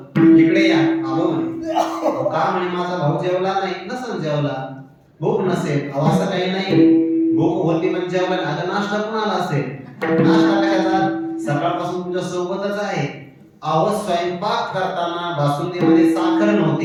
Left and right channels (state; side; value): identical; both; correlation 1.00